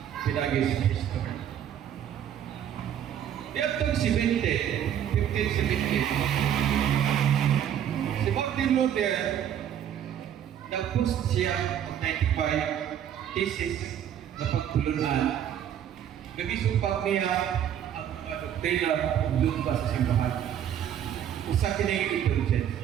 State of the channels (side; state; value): left; quieter; 9.9 dB